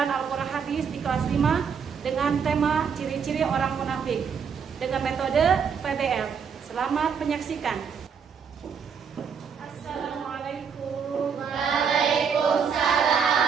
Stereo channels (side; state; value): left; quieter; 6.6 dB